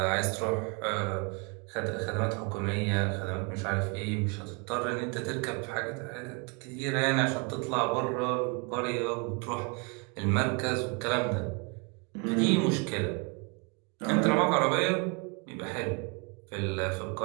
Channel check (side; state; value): left; quieter; 33.4 dB